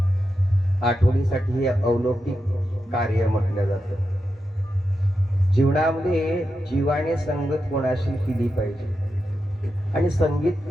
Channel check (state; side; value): normal; both; correlation 0.88